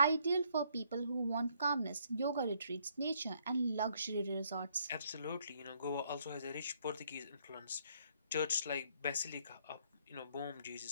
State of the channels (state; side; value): inverted; both; correlation -0.68